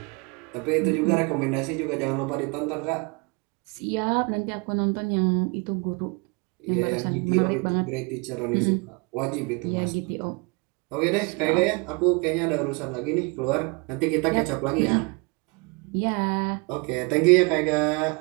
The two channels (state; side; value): quieter; left; 30.7 dB